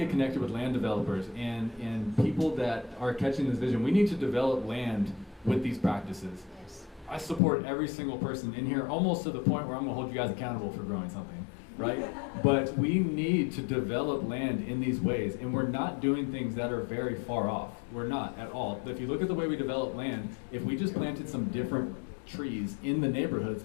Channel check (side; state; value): right; drops out; at 7.4 s